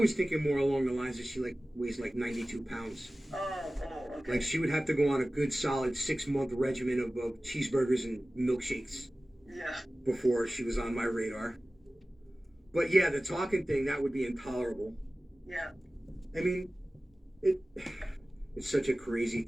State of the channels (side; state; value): both; normal; correlation 0.97